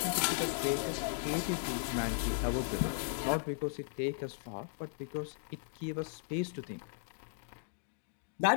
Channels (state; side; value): silent; right; digital silence